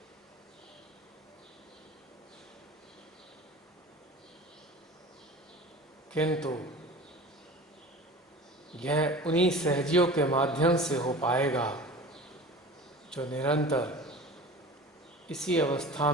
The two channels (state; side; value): normal; both; correlation 0.38